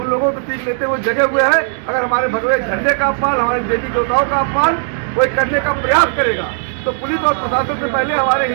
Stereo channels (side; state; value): left; silent; 69 dB below the other